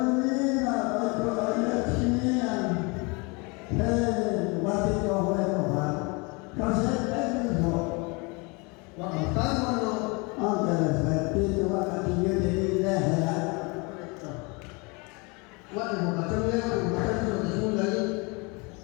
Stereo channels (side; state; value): right; quieter; 29.1 dB